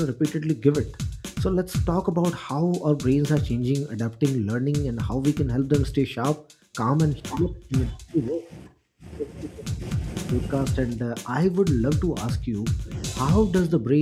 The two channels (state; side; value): identical; both; correlation 1.00